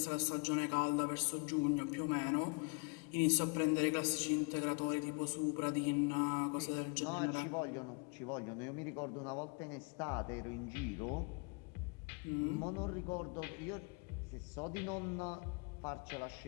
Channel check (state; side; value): quieter; right; 33.7 dB